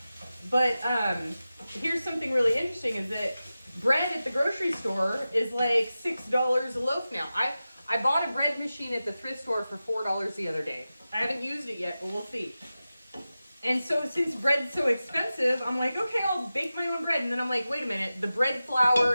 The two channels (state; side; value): inverted; both; correlation -0.94